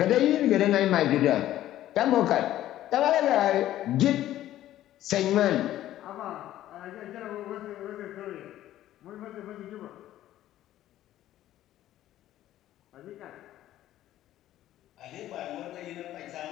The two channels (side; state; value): right; quieter; 13.4 dB